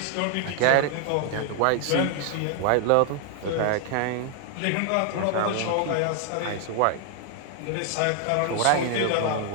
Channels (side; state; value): both; different; correlation 0.00